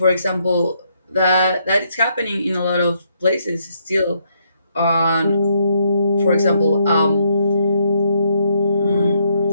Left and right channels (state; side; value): inverted; both; correlation -0.73